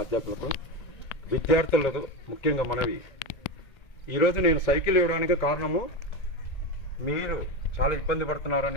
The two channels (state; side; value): late; right; 1.8 ms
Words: అధ్యాపకులకు, విద్యార్థులకు ముఖ్యంగా మనవి, ఈరోజు నేను సైకిల్ ఇవ్వడానికి కారణము మీరు చాలా ఇబ్బంది